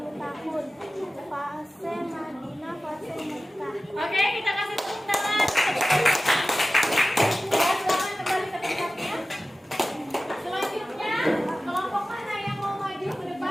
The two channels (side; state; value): both; normal; correlation 0.95